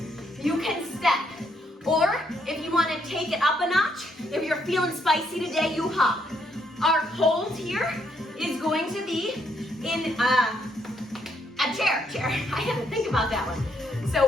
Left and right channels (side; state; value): both; normal; correlation 0.73